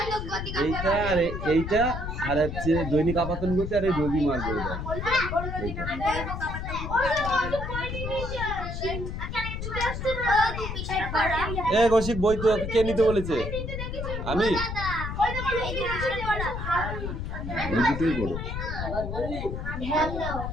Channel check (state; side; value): noise; left; rumble, 5 dB below the sound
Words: আর এইটা, আর হচ্ছে দৈনিক আপাতন গতি, আর এই রবিমার্গ। এইটা কৌশিক বই তো কে নিতে বলেছে? আমি এই দুটোই বড়।